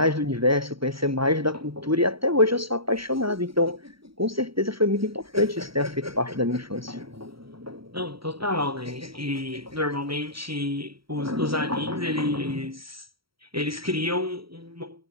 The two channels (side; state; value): left; late; 0.75 ms